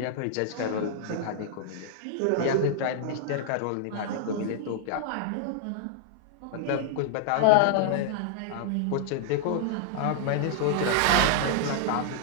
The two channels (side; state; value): both; different; correlation 0.00